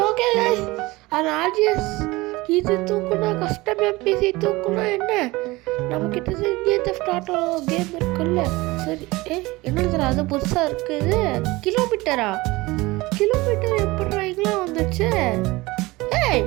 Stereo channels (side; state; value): left; quieter; 21.3 dB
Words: ஓகே guys. அந்த ஆர்ஜிஎஸ் இது தூக்குனா கஸ்டம் எம்பிசி தூக்குனா என்ன நம்மக்கிட்ட இந்தியன் தெஃப்ட் ஆட்டோ கேம் இருக்குல்ல. சரி என்னது அது புதுசாக இருக்குது. கிலோமீட்டர் எப்படிலாம் வந்துச்சு?